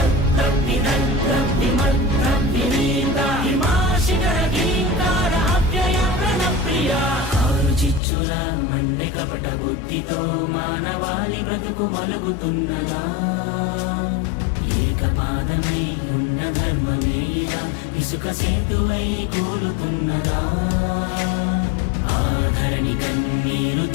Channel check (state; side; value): drops out; right; at 8.0 s